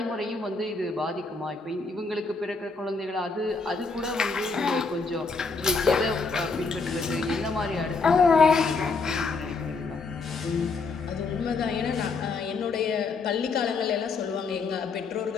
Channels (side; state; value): right; quieter; 4.2 dB